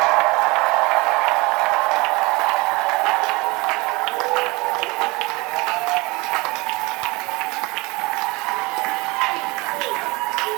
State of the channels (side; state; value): left; quieter; 24.5 dB